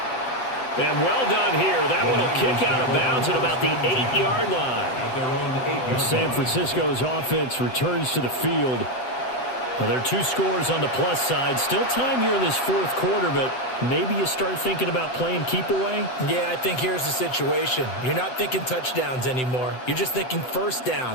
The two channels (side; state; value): right; late; 7.8 ms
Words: And well done here. That one will kick out of bounds at about the 8-yard line. San Francisco's offense returns to the field. Now, there are 2 scores on the plus side. Still time here in this fourth quarter, but maybe you start thinking about playing keep away? Yeah, I think here's the situation. You're not thinking touchdowns anymore. You're just thinking first